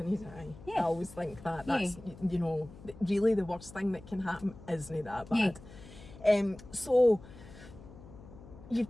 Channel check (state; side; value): noise; left; hum, 18 dB below the sound